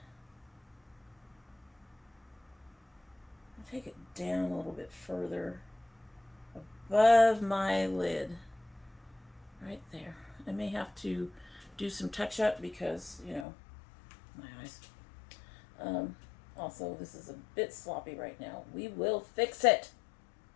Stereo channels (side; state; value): right; drops out; at 13.5 s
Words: I'll take it down a little bit further above my lid. Right there. I may have to do some touch up because, you know, my eyes. Also, this is a bit sloppy right now. We will fix it.